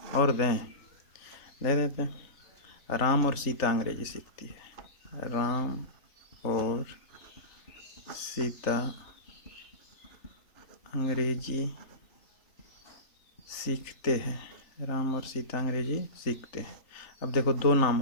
और दें, दे देते हैं। राम और सीता अंग्रेजी सीखती है। राम और सीता अंग्रेजी सीखते हैं। राम और सीता अंग्रेजी सीखते हैं। अब देखो दो नाम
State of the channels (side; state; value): right; late; 3.3 ms